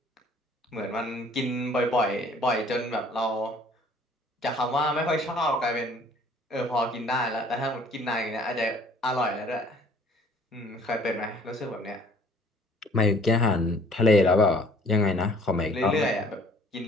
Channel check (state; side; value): normal; both; correlation 0.55